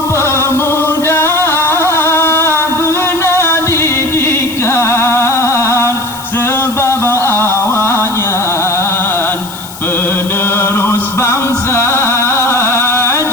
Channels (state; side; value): noise; left; hiss, 15 dB below the sound